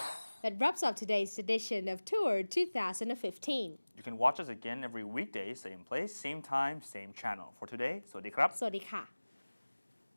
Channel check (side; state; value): both; inverted; correlation -1.00